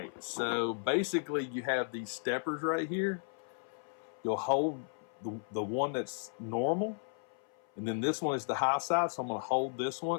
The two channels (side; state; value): right; silent; 55 dB below the other